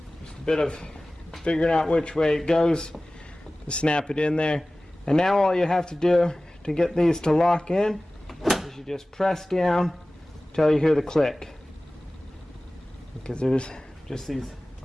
Just a bit of figuring out which way it goes to snap it in there. And now all you have to do to get these to lock in is you just press down until you hear the click, because there's just these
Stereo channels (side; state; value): both; normal; correlation 0.97